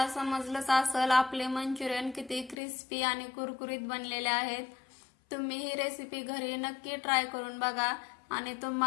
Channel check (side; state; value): right; drops out; at 2.6 s